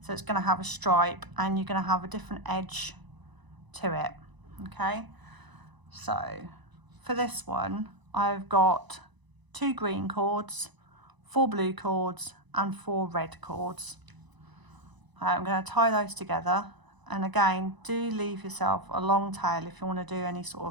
So it's going to have a stripe and you're going to have a different edge to it. Okay, so for this one I've got 2 green cords, 4 blue cords and 4 red cords. I'm going to tie those together, and again, do leave yourself a long tail if you want to do any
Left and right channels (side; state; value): left; late; 1.0 ms